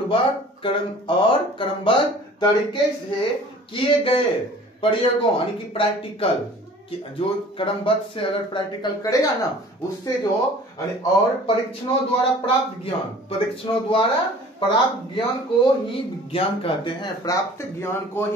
क्रमबद्ध तरीके से किए गए प्रयोगों, यानी कि प्रैक्टिकल, जो क्रमबद्ध से अगर प्रैक्टिकल करेगा ना, उससे जो और परीक्षणों द्वारा प्राप्त ज्ञान, परीक्षणों द्वारा प्राप्त ज्ञान को ही विज्ञान कहते हैं। प्राप्त ज्ञान को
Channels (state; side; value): normal; both; correlation 0.47